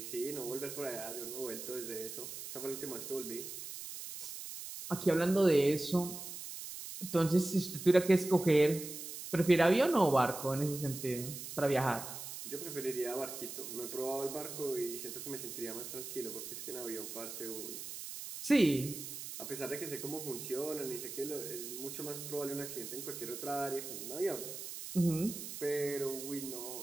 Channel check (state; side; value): noise; right; hiss, 9 dB below the sound